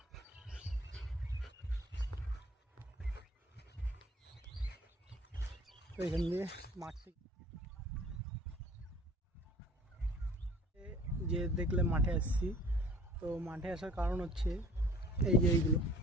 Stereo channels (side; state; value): both; normal; correlation 0.51